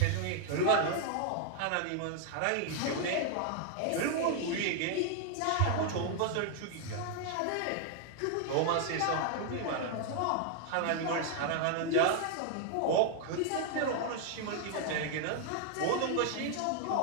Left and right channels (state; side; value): different; both; correlation 0.00